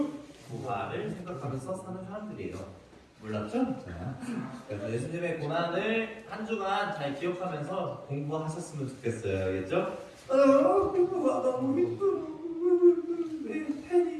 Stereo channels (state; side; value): identical; both; correlation 1.00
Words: 부활을 생각하면서 사는 사람들이에요. 몰랐죠? 자, 그래서 예수님의 고난을 한 주간 잘 기억하면서 공부하셨으면 좋겠어요. 알겠죠? 공부가 너무 힘들어. 내